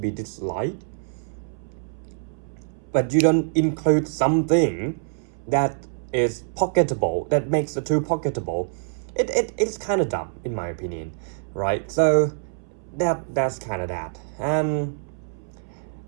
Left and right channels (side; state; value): left; silent; 62 dB below the other